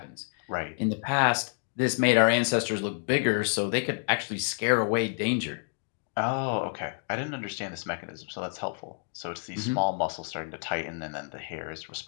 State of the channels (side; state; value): right; silent; 59 dB below the other